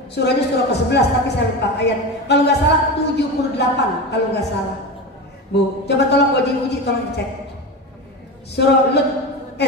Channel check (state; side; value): normal; both; correlation 0.23